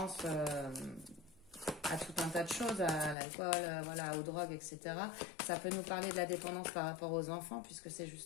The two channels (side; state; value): right; drops out; at 3.2 s